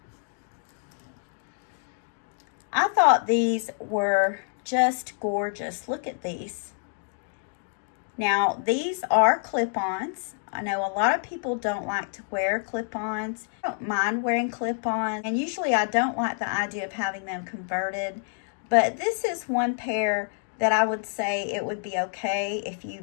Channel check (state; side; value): silent; right; 60 dB below the other